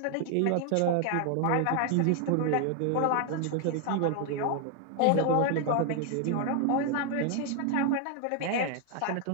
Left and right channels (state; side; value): different; both; correlation 0.00